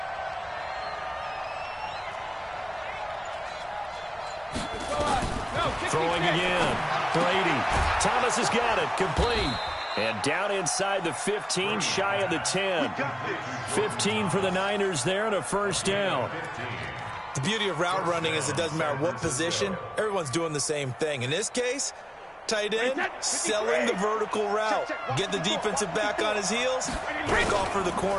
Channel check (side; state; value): both; identical; correlation 1.00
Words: Throwing again. Brady. Thomas has got it. Complete. And down inside the 15, shy of the 10. 15 for the Niners there and a 1st down. The beauty of route running is it doesn't matter what position, everyone's doing the same thing. In this case, tight end, selling the vertical route. Get the defensive back on his heels, break off for the